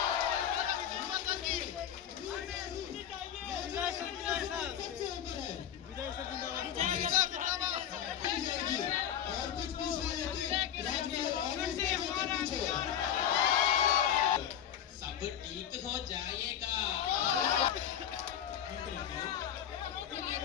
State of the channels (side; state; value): right; quieter; 9.8 dB